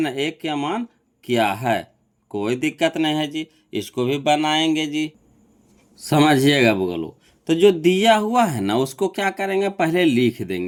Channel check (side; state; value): both; identical; correlation 1.00